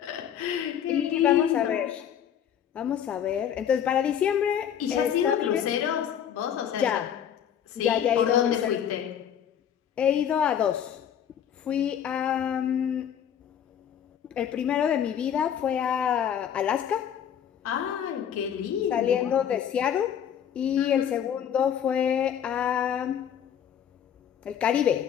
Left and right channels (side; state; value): right; quieter; 9.2 dB